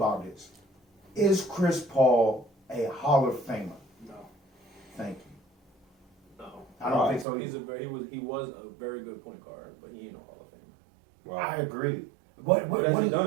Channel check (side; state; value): left; drops out; at 7.2 s